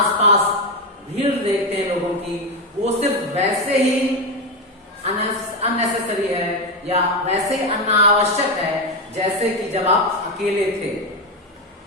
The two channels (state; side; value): normal; both; correlation 0.11